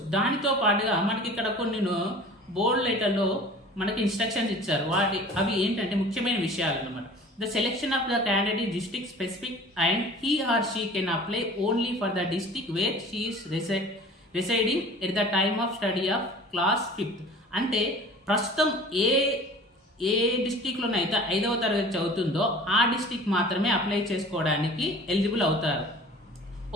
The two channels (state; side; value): normal; both; correlation 0.44